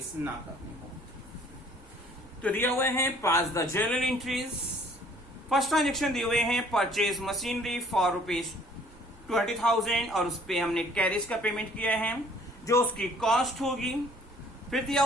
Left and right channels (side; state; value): both; normal; correlation 0.57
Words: ना करनी हो। तो दिया हुए हैं pass the journal entries. First transaction दिए हुए हैं परचेज मशीनरी फॉर ₹20,000 और उस पर हमने कैरेज का पेमेंट किया है जो उसकी कॉस्ट होगी। फिर दिया